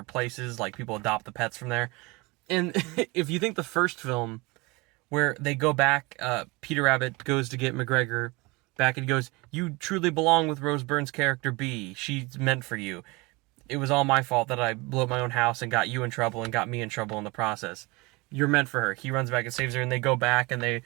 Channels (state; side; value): quieter; left; 25.0 dB